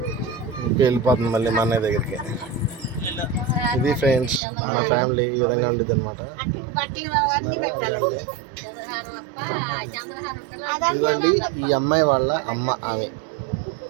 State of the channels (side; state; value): left; drops out; at 4.4 s